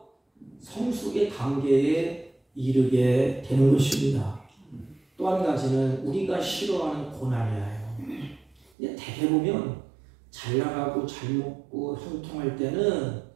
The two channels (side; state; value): left; drops out; at 8.7 s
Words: 성숙의 단계에 이르게 되는 것입니다. 또 한 가지는 우리가 싫어하는 고난이에요. 근데 대개 보면 잘 나가고 잘 먹고 형통할 때는